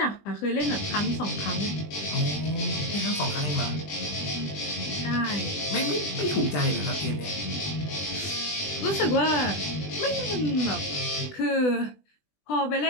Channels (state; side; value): late; right; 20 ms